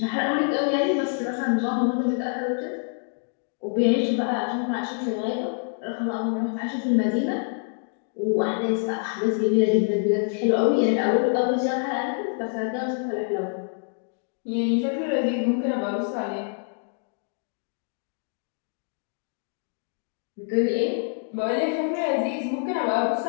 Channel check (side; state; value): right; silent; 60 dB below the other